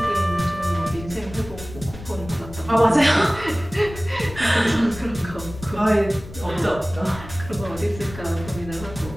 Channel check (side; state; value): left; noise; rumble, 14 dB below the sound